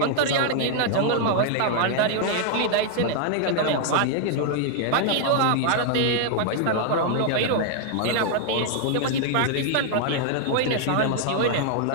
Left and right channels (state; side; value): different; both; correlation 0.00